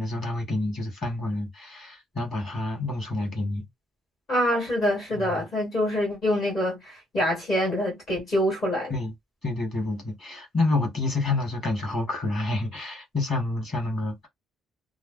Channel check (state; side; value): normal; both; correlation 0.70